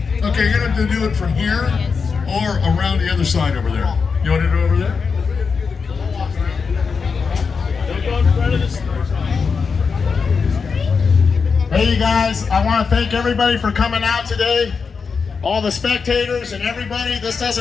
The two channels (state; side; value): quieter; right; 5.4 dB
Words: Okay, you're gonna have to do it from here or around the other side over there. You want to do it over there? Don't go in front of the store. Hey, you guys, I want to thank everybody for coming out today. All the spectators and everybody. This